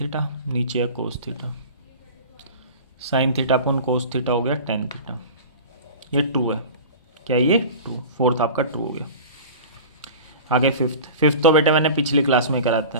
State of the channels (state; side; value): inverted; both; correlation -0.36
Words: theta, नीचे है cos theta, sine theta cos theta हो गया tan थीटा। ये ट्रू है, क्या ये ट्रू, फोर्थ आपका ट्रू हो गया। आगे फिफ्थ तो बेटे मैंने पिछली क्लास में कराता